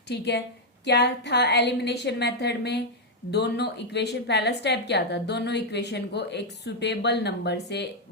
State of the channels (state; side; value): normal; both; correlation -0.01